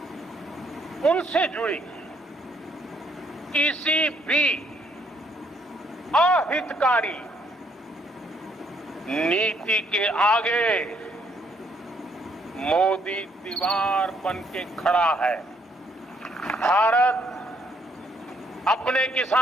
उनसे जुड़ी किसी भी अहितकारी नीति के आगे मोदी दीवार बन के खड़ा है। भारत अपने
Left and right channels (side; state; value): both; normal; correlation 0.69